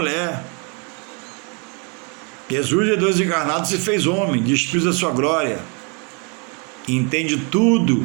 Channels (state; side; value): quieter; left; 34.6 dB